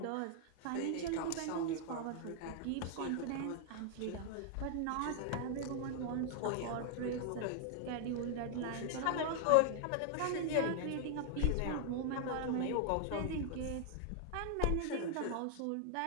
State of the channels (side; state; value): both; different; correlation 0.00